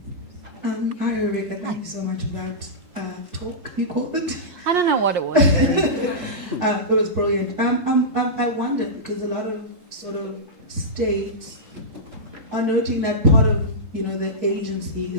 Hi, Rebecca. Thank you so much for that talk, you called it. I don't know what it was. It was brilliant. I wonder, because a lot of sort of states are noting that part of, you know, the agency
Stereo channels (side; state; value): left; late; 3.7 ms